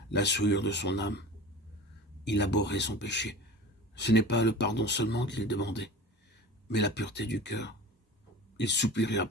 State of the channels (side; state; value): both; normal; correlation 0.35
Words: la souillure de son âme. Il abhorrait son péché. Ce n'est pas le pardon seulement qu'il demandait, mais la pureté du cœur. Il soupirait